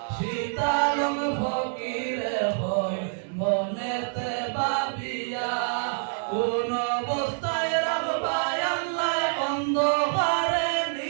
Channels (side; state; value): left; silent; 60 dB below the other